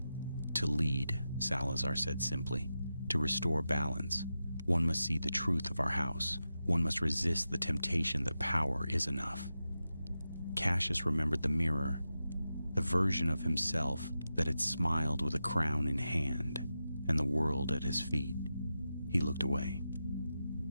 "To lead," Salazar said simply. "To restore balance. One must see the truth of our house. One must resist the temptation that power is enough." Cassius remembered the mirror, the version of himself that had smiled with a crown in hand and the world at his feet. He looked away.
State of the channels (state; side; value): inverted; both; correlation -0.91